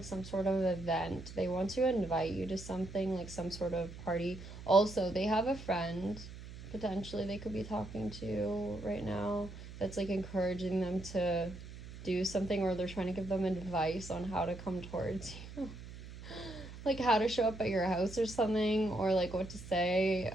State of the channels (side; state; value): right; noise; hum, 13 dB below the sound